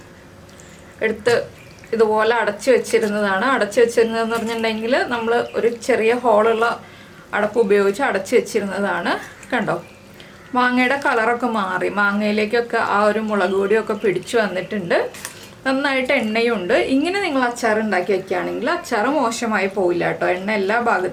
എടുത്ത് ഇതുപോലെ അടച്ചു വെച്ചിരുന്നതാണ്. അടച്ചു വെച്ചിരുന്നതെന്ന് പറഞ്ഞിട്ടുണ്ടെങ്കിൽ നമ്മൾ ഒരു ചെറിയ ഹോളുള്ള അടപ്പ് ഉപയോഗിച്ച് അടച്ചു വെച്ചിരുന്നതാണ്. കണ്ടോ, മാങ്ങയുടെ കളറൊക്കെ മാറി. മാങ്ങയിലേക്കൊക്കെ ആ ഒരു മുളക് പൊടിയൊക്കെ പിടിച്ചു വന്നിട്ടുണ്ട്. നന്നായിട്ട് എണ്ണയുണ്ട്. ഇങ്ങനെ നിങ്ങൾ അച്ചാർ ഉണ്ടാക്കി വെക്കുകയാണെങ്കിൽ അച്ചാർ മോശമായി പോവില്ല കേട്ടോ. എണ്ണ എല്ലാ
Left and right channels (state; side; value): identical; both; correlation 1.00